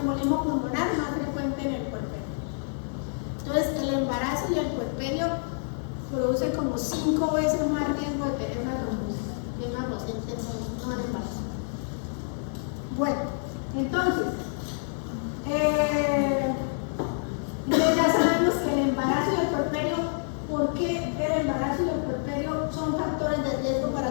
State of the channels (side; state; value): right; silent; digital silence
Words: pulmonar más frecuente en el puerperio. Entonces, el embarazo y el puerperio producen como 5 veces más riesgo de tener una trombosis en una paciente no en embarazo. Bueno, entonces, ya sabemos que el embarazo y el puerperio, ¿por qué el embarazo y el puerperio son factores de riesgo